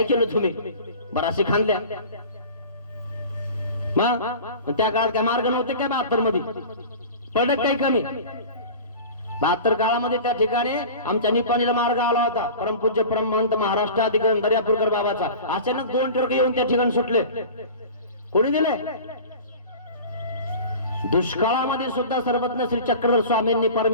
केलं तुम्ही, बराचसे खाल्ल्या. मग त्या काळात काय मार्ग नव्हते काय 72 मध्ये? पडत काही कमी. 72 काळामध्ये त्या ठिकाणी आमच्या निपाणीला मार्ग आला होता. परमपूज्य परमहंत महाराष्ट्राधिकारी दर्यापूरकर बाबाचा. अचानक 2 ट्रक येऊन त्या ठिकाणी सुटले. कोणी दिले? दुष्काळामध्ये सुद्धा सर्वज्ञ श्री चक्रधर स्वामींनी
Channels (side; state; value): both; inverted; correlation -0.37